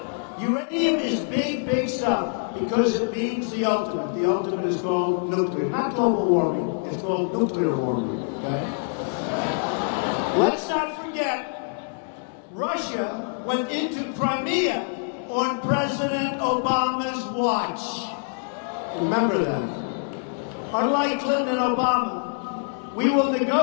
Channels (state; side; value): silent; right; 62 dB below the other